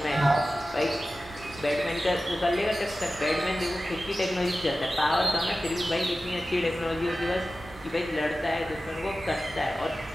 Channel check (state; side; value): normal; both; correlation 0.95